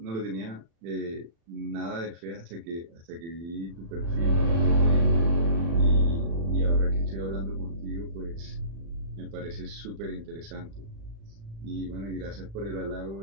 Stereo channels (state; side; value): late; left; 36 ms